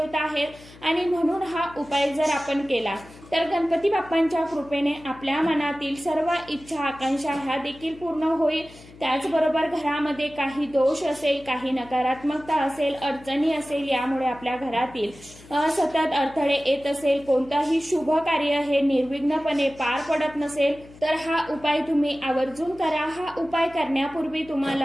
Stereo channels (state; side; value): noise; left; hum, 21 dB below the sound